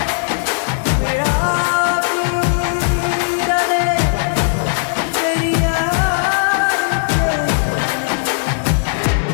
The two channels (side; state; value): right; silent; 68 dB below the other